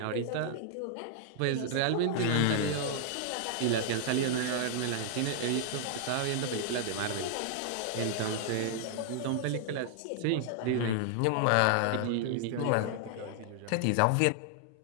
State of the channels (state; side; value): different; both; correlation -0.01